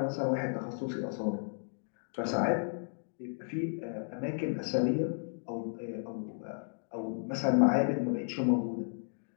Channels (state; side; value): silent; right; digital silence